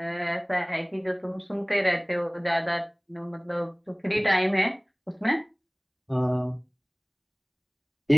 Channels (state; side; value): identical; both; correlation 1.00